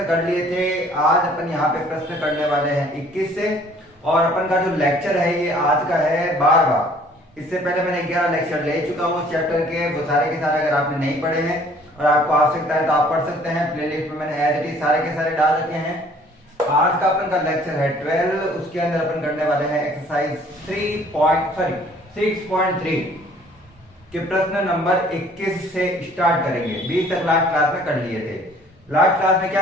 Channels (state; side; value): normal; both; correlation 0.56